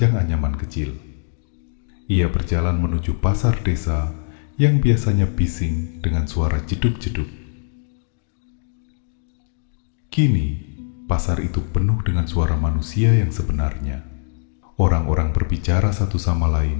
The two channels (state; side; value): silent; right; digital silence